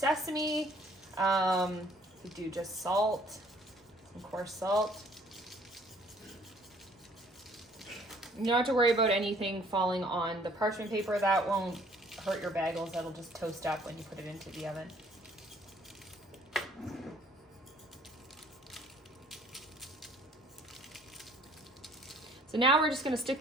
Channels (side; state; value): both; normal; correlation 0.58